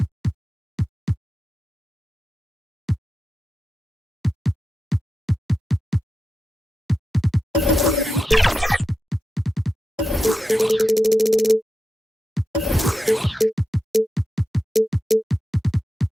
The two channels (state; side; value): normal; both; correlation 0.90